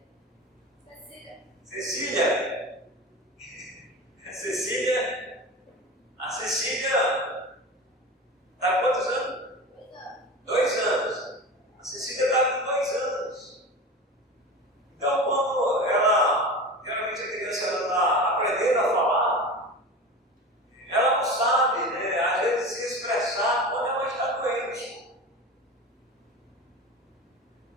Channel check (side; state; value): both; normal; correlation 0.30